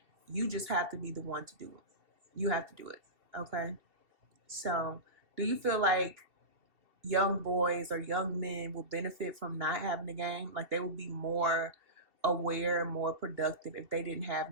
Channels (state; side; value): late; left; 2.7 ms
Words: You just have to be the one to do it. You have to do it. Okay? So, do you feel like young boys or young men will benefit from not having a game? Like they will be more aware and more productive if they didn't